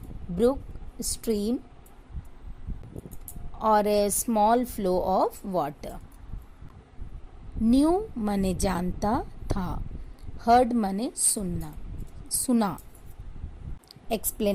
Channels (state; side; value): identical; both; correlation 1.00